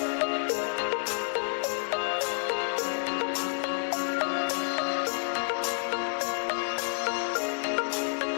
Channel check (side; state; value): right; silent; 58 dB below the other